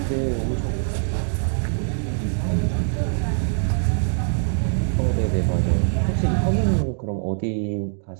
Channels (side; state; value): left; silent; digital silence